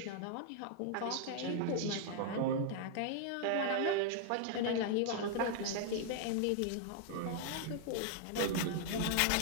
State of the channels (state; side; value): different; both; correlation 0.00